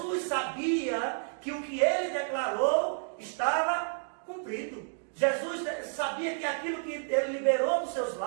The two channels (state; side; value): silent; left; digital silence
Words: sabia que o que ele declarou estava cumprido. Jesus sabia que aquilo que ele liberou dos seus